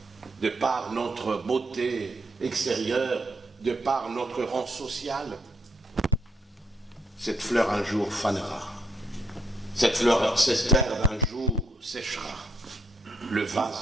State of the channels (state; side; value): normal; both; correlation 0.76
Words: de par notre beauté extérieure, de par notre rang social, cette fleur un jour fanera. Cette herbe un jour séchera. Le